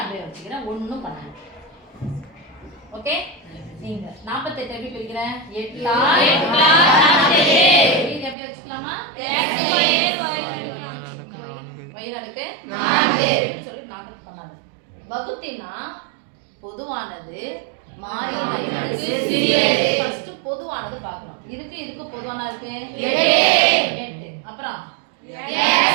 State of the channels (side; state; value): left; drops out; at 8.3 s